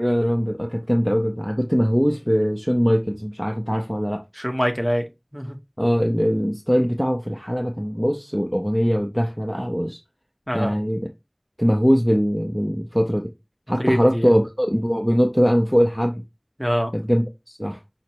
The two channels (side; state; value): both; identical; correlation 1.00